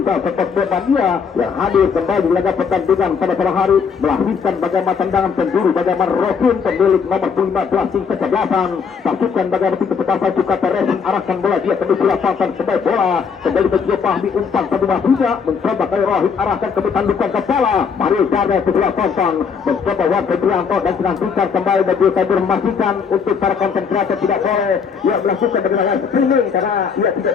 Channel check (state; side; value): quieter; right; 6.1 dB